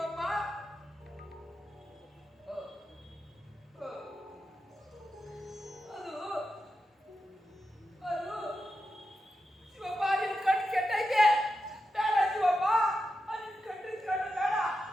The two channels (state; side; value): normal; both; correlation 0.89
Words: ಅದು ಅದು ಶಿವಪ್ಪ, ನಿನ್ ಕಣ್ಣು ಕೆಟ್ಟೈತೆ. ಬೇಡ ಶಿವಪ್ಪ, ನಿನ್ ಕಣ್ಣಿನ ಕಣ್ಣು ಬೇಡ.